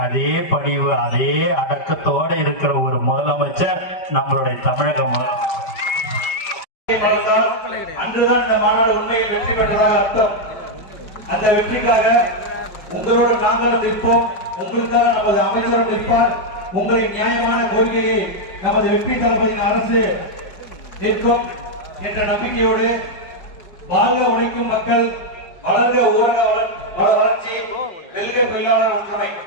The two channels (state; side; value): late; right; 5.1 ms